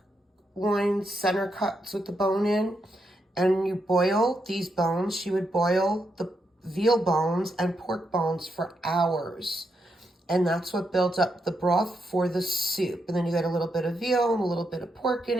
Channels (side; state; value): both; normal; correlation 0.82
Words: loin center cuts with the bone in. And you boil these bones. She would boil the veal bones and pork bones for hours. And that's what builds up the broth for the soup. And then you get a little bit of veal and a little bit of pork in